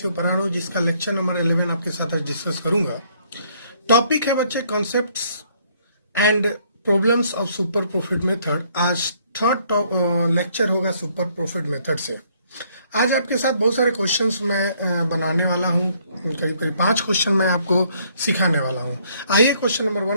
पढ़ाना, जिसका lecture number 11 आपके साथ आज discuss करूंगा। Topic है बच्चे concepts and problems of super profit method. आज थर्ड लेक्चर होगा सुपर प्रॉफिट मेथड से। आज आपके साथ बहुत सारे क्वेश्चंस मैं बनाने वाला हूं, करीब करीब 5 क्वेश्चन मैं आपको सिखाने वाला हूं। आइए क्वेश्चन नंबर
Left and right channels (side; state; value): both; inverted; correlation -0.66